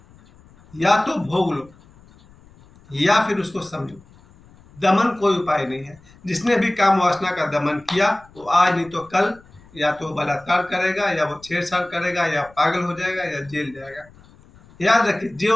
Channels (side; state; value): left; noise; rumble, 26 dB below the sound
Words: या तो भोग लो या फिर उसको समझो। दमन कोई उपाय नहीं है। जिसने भी काम वासना का दमन किया वो आज नहीं तो कल या तो बलात्कार करेगा, या वो छेड़छाड़ करेगा, या पागल हो जाएगा, या जेल जाएगा। याद रखिए,